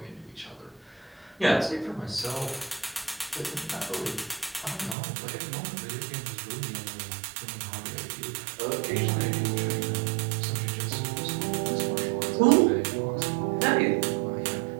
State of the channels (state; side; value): drops out; left; at 5.0 s